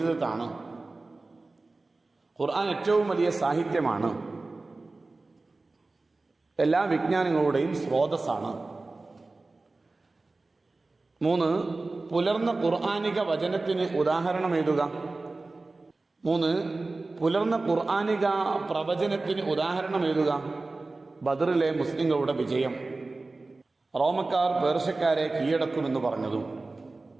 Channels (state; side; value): quieter; left; 3.4 dB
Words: ഖുർആൻ ഏറ്റവും വലിയ സാഹിത്യമാണ്, എല്ലാ വിജ്ഞാനങ്ങളുടെയും സ്രോതസ്സാണ്. 3, പുലർന്ന ഖുർആനിക വചനത്തിന് ഉദാഹരണം എഴുതുക. 3, പുലർന്ന ഖുർആനിക പ്രവചനത്തിന് ഉദാഹരണം എഴുതുക. ബദറിലെ മുസ്ലിങ്ങളുടെ വിജയം, റോമക്കാർ പേർഷ്യക്കാരെ കീഴടക്കുമെന്ന് പറഞ്ഞതും.